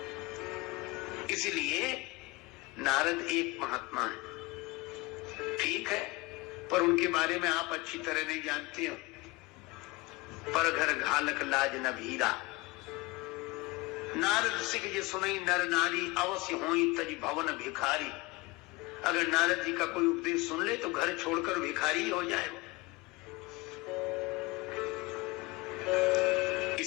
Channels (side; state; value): right; quieter; 22.9 dB